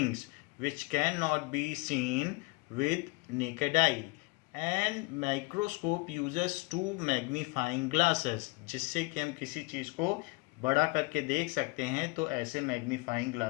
which can not be seen with naked eye. And microscope uses two magnifying glasses, जिससे कि हम किसी चीज़ को बड़ा करके देख सकते हैं. तो ऐसे मैग्नीफाइंग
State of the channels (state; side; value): quieter; right; 26.1 dB